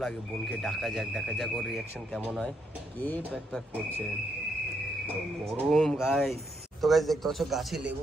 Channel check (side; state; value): both; normal; correlation 0.76